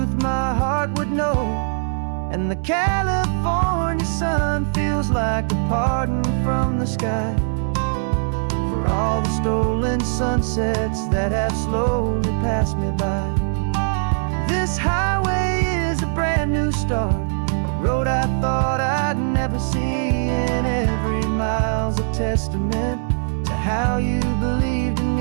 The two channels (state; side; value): silent; left; digital silence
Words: my heart would know. And the California sun feels like a pardon from the sky for all the stolen sunsets that have slowly passed me by. This highway is a brand new start, a road I thought I'd never see, and every mile's a testament to how you believed in